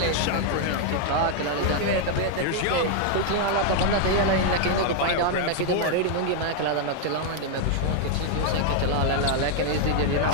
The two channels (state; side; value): different; both; correlation 0.00